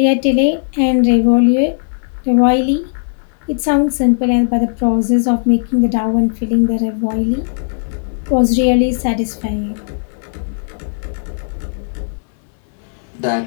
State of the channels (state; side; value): silent; right; digital silence